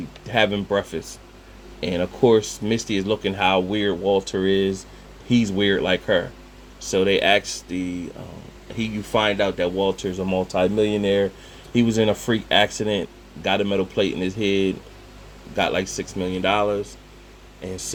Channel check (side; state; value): both; identical; correlation 1.00